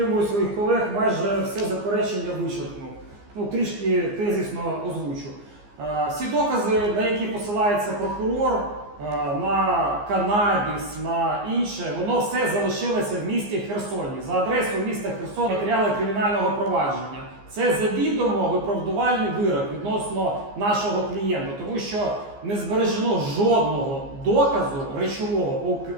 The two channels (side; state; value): left; late; 15 ms